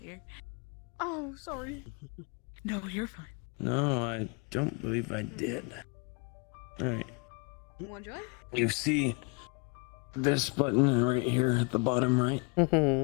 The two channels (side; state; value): right; quieter; 32.2 dB